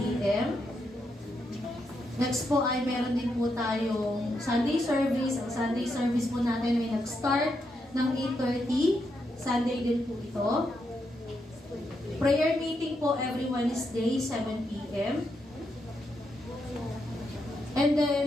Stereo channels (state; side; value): normal; both; correlation 0.82